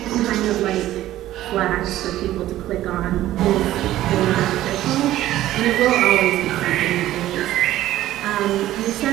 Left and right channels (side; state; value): left; quieter; 14.2 dB